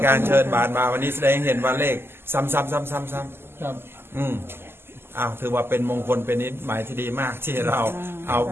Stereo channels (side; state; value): left; late; 0.12 ms